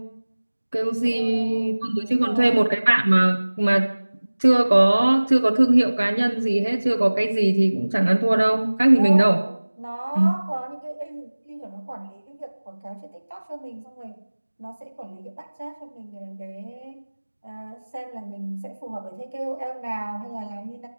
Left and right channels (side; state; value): both; inverted; correlation -1.00